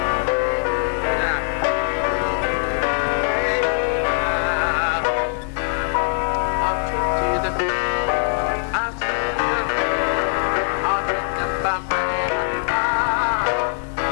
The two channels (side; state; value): right; silent; digital silence